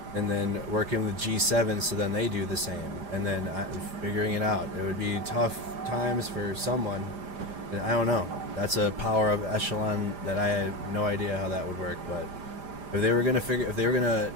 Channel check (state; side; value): late; left; 5.0 ms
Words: and then working with G7 so then they do the same, and then figuring it out. It would be tough times for someone. I don't know. That's a power of echelon that I have no idea how that would work, but if they were going to